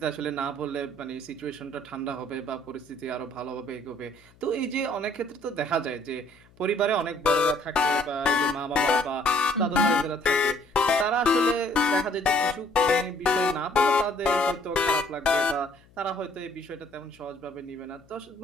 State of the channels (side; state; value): left; noise; hum, 29 dB below the sound